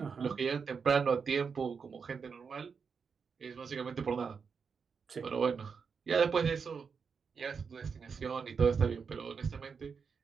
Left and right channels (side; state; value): left; quieter; 5.8 dB